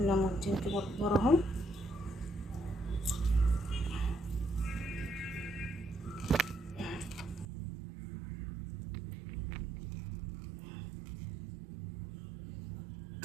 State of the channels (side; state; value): left; drops out; at 7.5 s